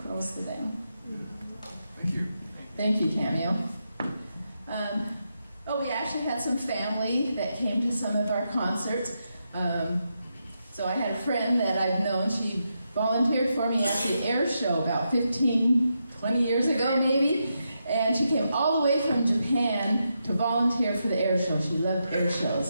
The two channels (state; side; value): inverted; both; correlation -0.84